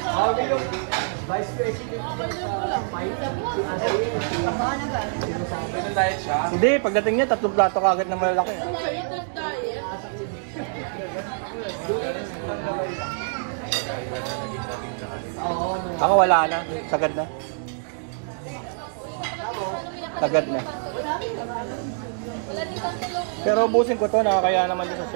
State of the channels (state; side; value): silent; left; digital silence